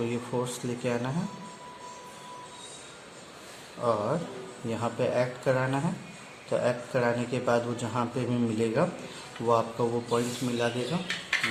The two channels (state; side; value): identical; both; correlation 1.00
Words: ये फोर्स लेके आना है, और यहाँ पे ऐड कराना है। तो ऐड कराने के बाद वो जहाँ पे भी मिलेगा वो आपका वो पॉइंट मिला देगा,